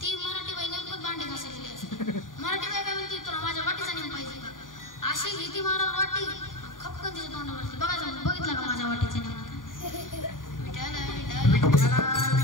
ती मराठी बाई नेमकं भांडे घासलेली असते. मराठी बाई काय म्हणते तुला माझ्या वाटीचा नेम पाहिजे का. अशी घेती महाराज वाटी खपकन तिच्या तोंडावरती बघितला का माझ्या वाटीचा नेम. विठाला विठाला विठाला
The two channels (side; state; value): right; late; 0.89 ms